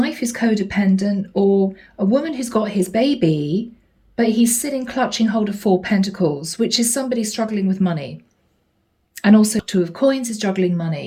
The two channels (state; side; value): identical; both; correlation 1.00